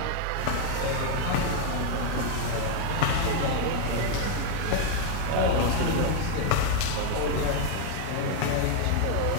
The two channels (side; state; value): both; different; correlation 0.00